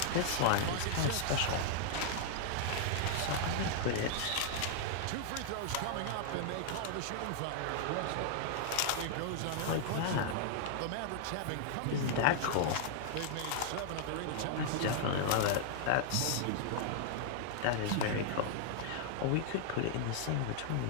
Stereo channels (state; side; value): different; both; correlation 0.00